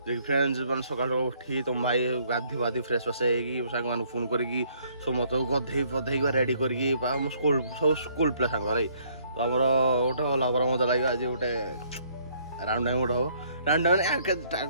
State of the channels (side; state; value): both; inverted; correlation -0.65